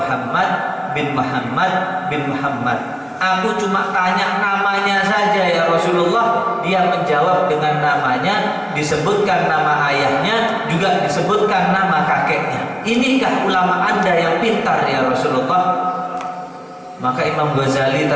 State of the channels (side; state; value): both; identical; correlation 1.00